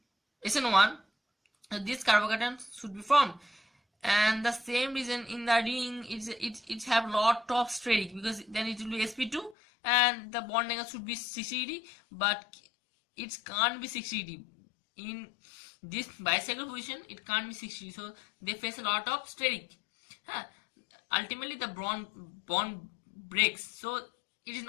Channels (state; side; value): drops out; right; at 9.6 s